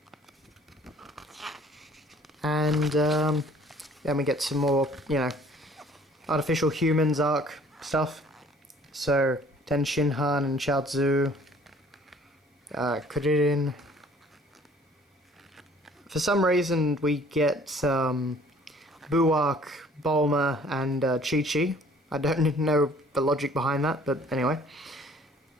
And then we get some more, artificial humans arc stuff. So Ten Shinhan and Chaozu, Kuririn. For some reason we get Buark, Bulma, and Chi-Chi. I don't know the logic behind that, but anyway.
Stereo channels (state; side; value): normal; both; correlation 0.55